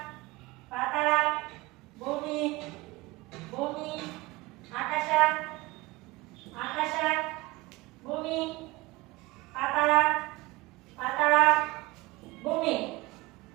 ಪಾತಾಳ, ಭೂಮಿ, ಭೂಮಿ, ಆಕಾಶ, ಆಕಾಶ, ಭೂಮಿ, ಪಾತಾಳ, ಪಾತಾಳ, ಭೂಮಿ,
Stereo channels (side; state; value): left; quieter; 21.8 dB